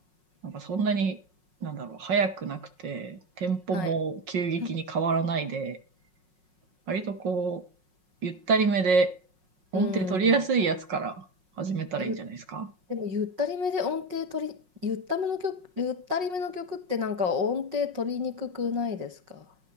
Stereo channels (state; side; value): late; left; 5.5 ms